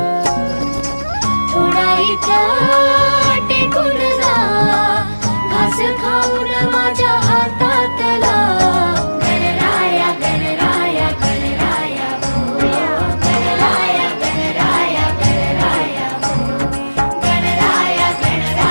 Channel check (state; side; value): inverted; both; correlation -1.00